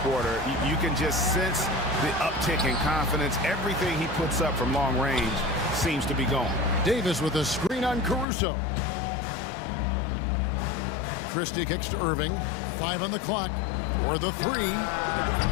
quarter. You can just sense the uptick in confidence. Everything he puts up from long range seems to be gone. Davis with a screen on Caruso. Christie kicks to Irving. 5 on the clock for the three.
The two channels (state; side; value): drops out; right; at 8.2 s